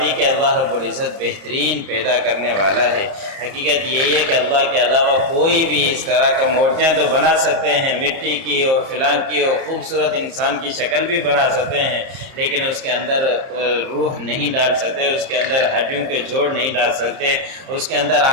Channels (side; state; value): left; late; 30 ms